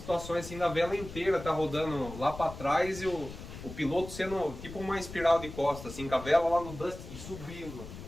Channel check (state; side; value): noise; left; rumble, 12 dB below the sound